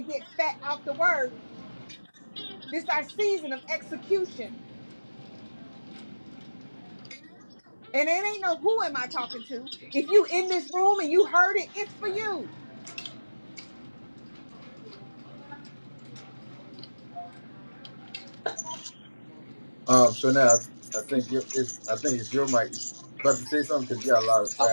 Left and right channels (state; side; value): inverted; both; correlation -1.00